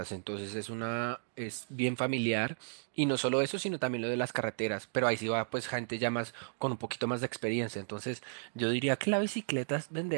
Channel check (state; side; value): silent; left; digital silence